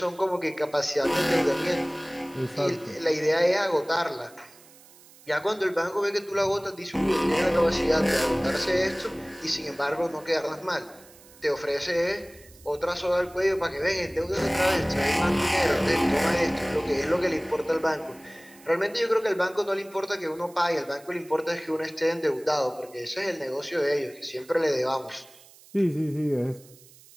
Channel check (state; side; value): noise; right; hiss, 24 dB below the sound